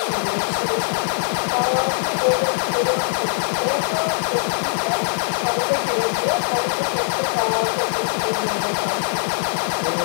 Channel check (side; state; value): right; silent; digital silence